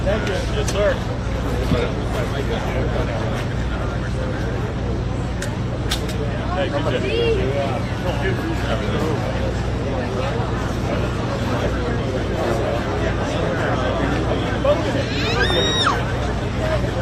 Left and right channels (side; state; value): both; identical; correlation 1.00